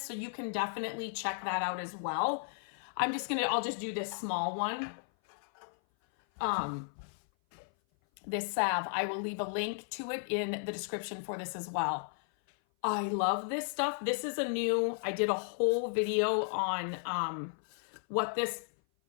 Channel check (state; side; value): silent; right; 55 dB below the other